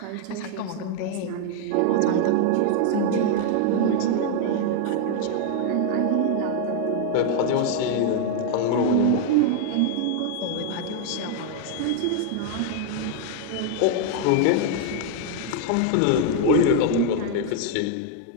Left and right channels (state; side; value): different; both; correlation 0.00